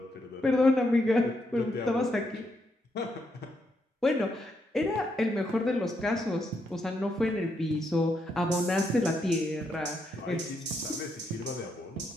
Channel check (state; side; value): normal; both; correlation 0.79